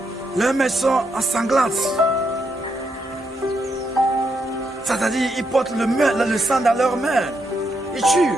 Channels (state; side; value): normal; both; correlation 0.80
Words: Leurs mains sont ensanglantes. C'est-à-dire, ils portent le sang dans leurs mains. Ils tuent.